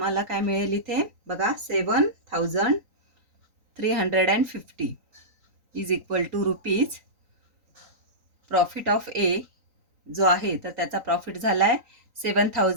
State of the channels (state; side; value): late; left; 3.9 ms